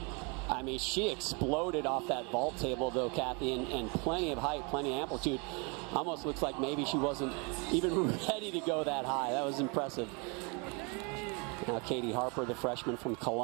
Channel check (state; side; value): quieter; left; 32.1 dB